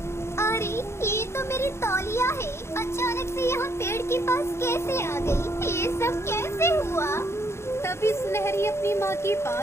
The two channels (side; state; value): right; late; 0.13 ms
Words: अरे ये तो मेरी तौलिया है। अचानक से यहाँ पेड़ के पास कैसे आ गई? ये सब कैसे हुआ? तभी सुनहरी अपनी माँ के